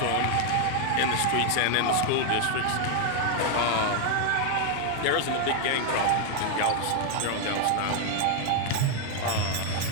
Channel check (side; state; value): both; different; correlation 0.01